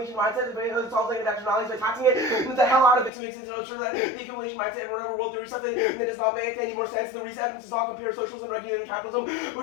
mindset. It solves negative externalities by taxing it the hell out of it to make sense of sure that the accumulation mindset and whatever world theory stuff that does not make any more sense. The reason evidence does not compare socialism and regulated capitalism,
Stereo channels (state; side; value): drops out; right; at 3.1 s